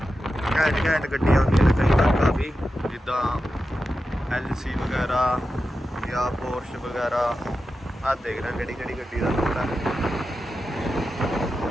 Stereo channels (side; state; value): both; normal; correlation 0.91